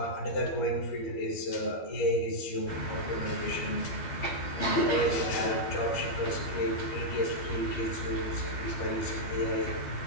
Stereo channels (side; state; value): right; late; 12 ms